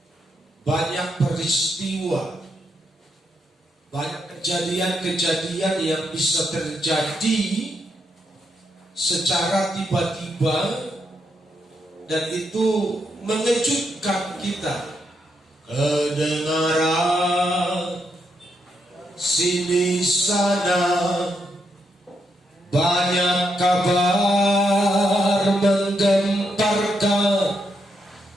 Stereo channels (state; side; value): normal; both; correlation 0.80